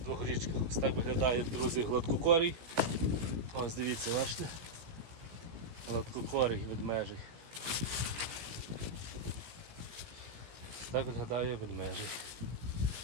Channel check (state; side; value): late; left; 17 ms